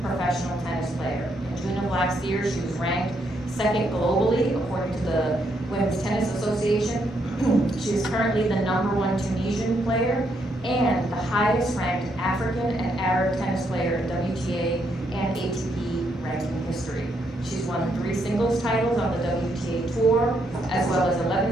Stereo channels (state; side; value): normal; both; correlation 0.76